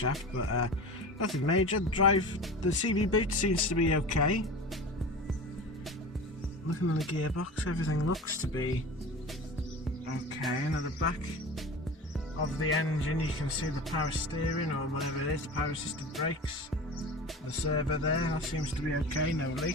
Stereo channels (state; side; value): normal; both; correlation 0.33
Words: but nothing major. The CV boot seems to be okay. Looking at the gearbox, everything looks to be okay. And at the back of the engine you can see the power steering, or whatever it is, the power assisted brakes. The servo there, that seems to be okay, no